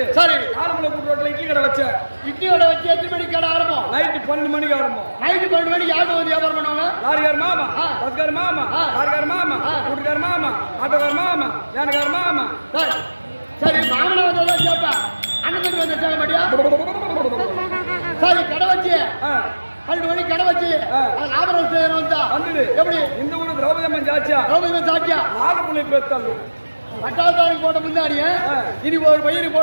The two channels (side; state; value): both; inverted; correlation -1.00